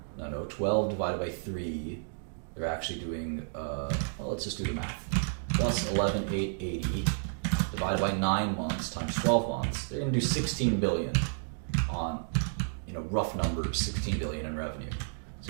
12 divided by 3. They're actually doing, well, let's just do the math. Plus 11,880 divided by 9 months times 12 months. They're going to do 16 billion on, rough numbers, 16 billion in revenue.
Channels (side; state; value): left; silent; digital silence